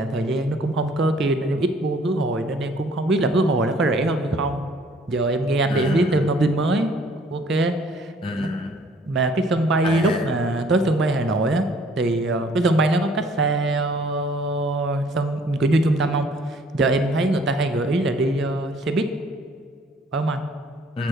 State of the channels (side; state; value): both; normal; correlation 0.58